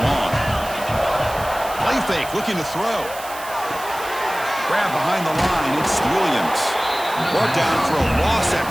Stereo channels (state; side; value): noise; right; hiss, 14 dB below the sound